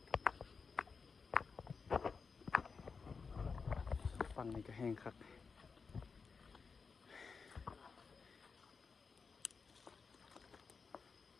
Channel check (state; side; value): quieter; right; 5.1 dB